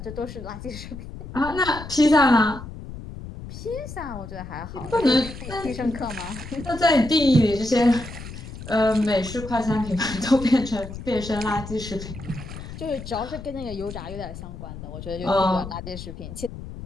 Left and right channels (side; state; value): left; noise; rumble, 11 dB below the sound